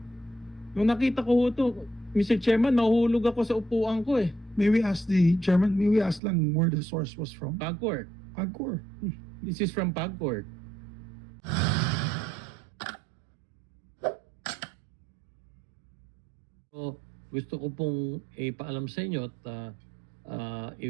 Nung nakita ko ho ito, Mr. Chairman, nahulog ako sa upuan ko eh. May we ask the chairman, may we ask lang where the source was from? PAGCOR. PAGCOR. This is from PAGCOR. So, gusto ko pong ipaalam sa inyo at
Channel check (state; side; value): drops out; left; at 6.2 s